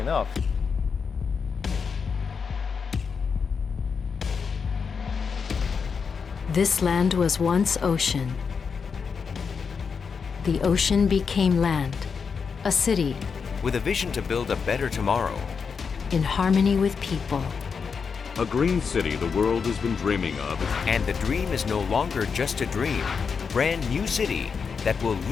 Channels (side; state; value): right; quieter; 5.8 dB